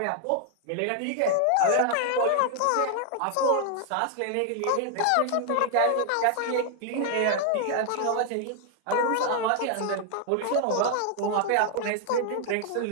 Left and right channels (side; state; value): both; different; correlation 0.00